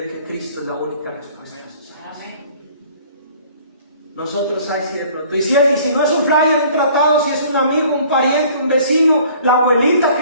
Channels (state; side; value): inverted; both; correlation -0.53